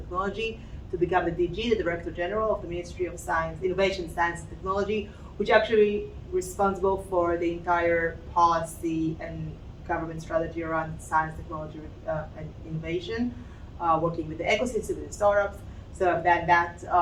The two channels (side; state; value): both; identical; correlation 1.00